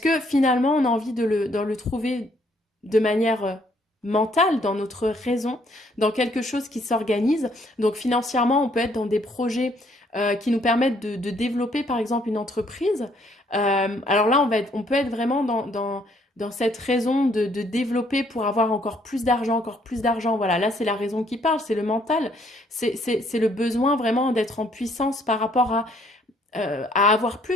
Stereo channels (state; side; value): normal; both; correlation 0.66